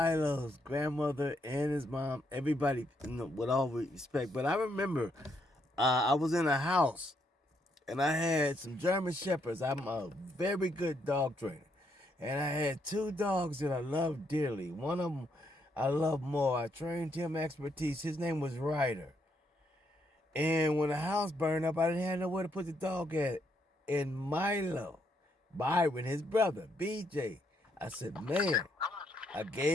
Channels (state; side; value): normal; both; correlation 0.75